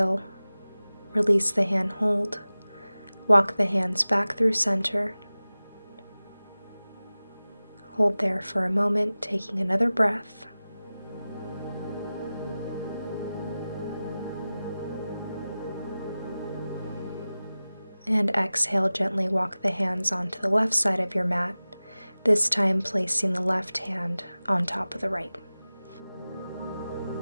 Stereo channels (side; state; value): both; inverted; correlation -0.97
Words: release the hand hold. Walk the hands back through center. Hold there for a moment, taking another breath. And exhale, gently walk the hands onto the left side of your mat, this time placing the left hand on top of the right.